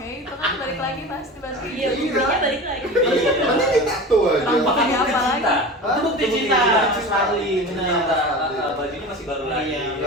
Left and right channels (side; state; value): both; normal; correlation 0.32